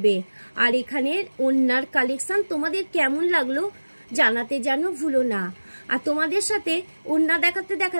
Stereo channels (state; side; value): inverted; both; correlation -1.00